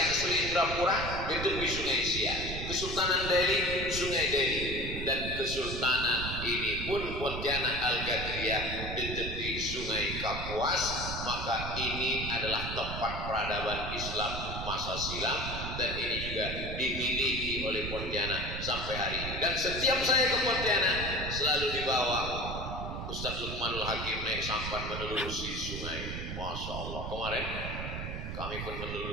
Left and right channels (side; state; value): right; noise; rumble, 6 dB below the sound